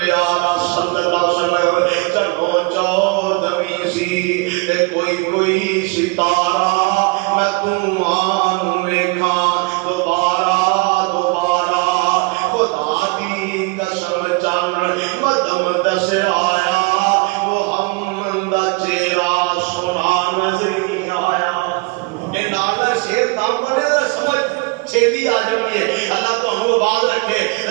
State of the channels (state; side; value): quieter; left; 27.0 dB